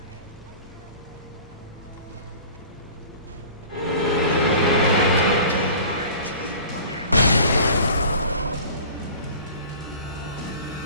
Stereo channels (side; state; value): both; inverted; correlation -0.42